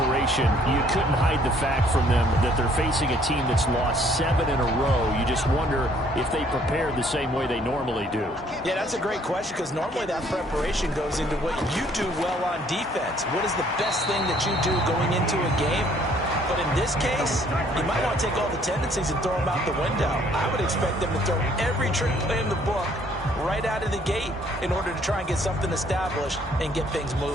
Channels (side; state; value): both; normal; correlation 0.62